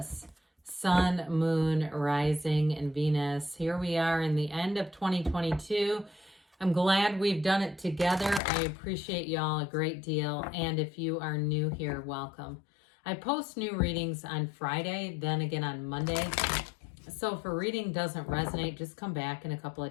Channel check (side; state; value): right; drops out; at 8.4 s